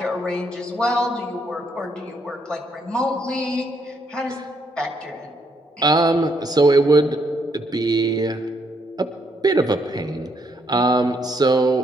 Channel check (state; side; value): normal; both; correlation 0.74